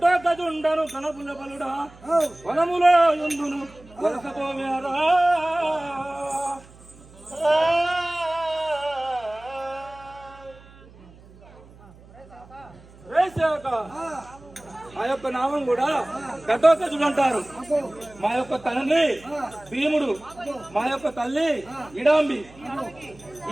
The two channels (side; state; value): right; noise; hum, 23 dB below the sound